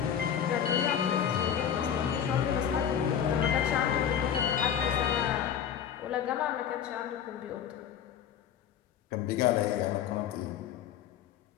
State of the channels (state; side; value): quieter; right; 8.7 dB